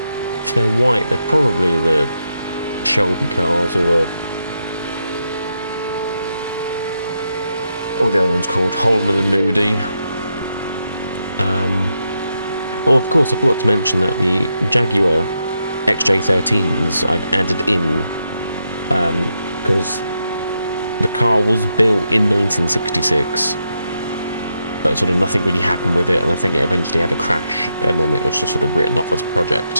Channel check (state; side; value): inverted; both; correlation -0.83